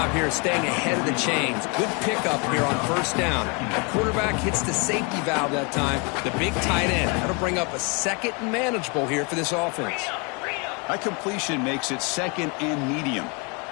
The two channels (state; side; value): quieter; right; 32.3 dB